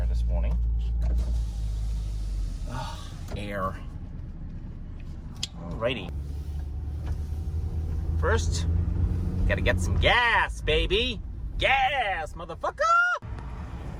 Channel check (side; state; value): both; identical; correlation 1.00